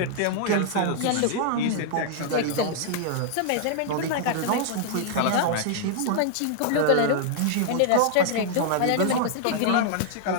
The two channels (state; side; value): different; both; correlation -0.01